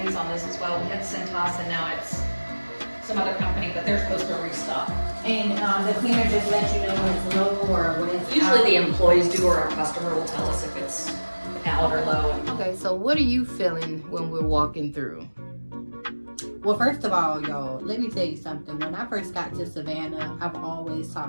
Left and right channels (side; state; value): both; inverted; correlation -1.00